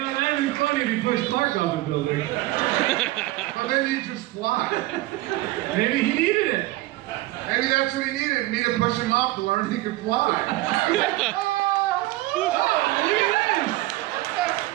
that'd be funny if you pushed Clark off the building. But then he'd just fly. Maybe he needed it. Maybe that's what he needed, me to push him off to learn he could fly. Oh, look at this!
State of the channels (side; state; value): left; quieter; 18.3 dB